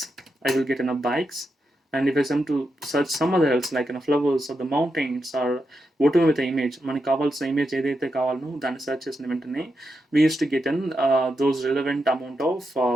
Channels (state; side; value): normal; both; correlation 0.86